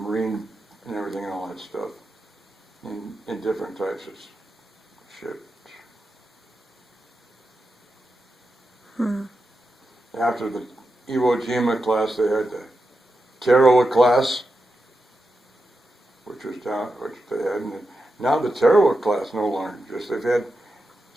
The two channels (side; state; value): both; normal; correlation 0.89